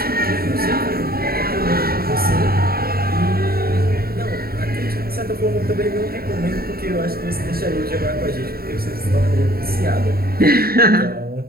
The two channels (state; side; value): late; left; 0.44 ms